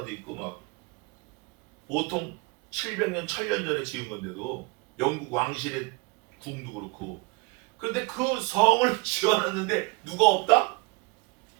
있고 막 보통 700년, 1000년 전에 지은 건데도 영국 왕실의 궁도 그렇고. 그런데 그 성을 지어놨는데 누가 없다?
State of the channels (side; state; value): left; quieter; 27.9 dB